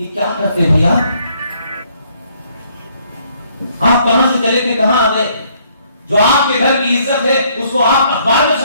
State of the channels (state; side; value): inverted; both; correlation -0.66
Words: क्या करते हैं भैया? आप कहां से चले थे, कहां आ गए? जो आपके घर की इज्जत है उसको आप अखबार में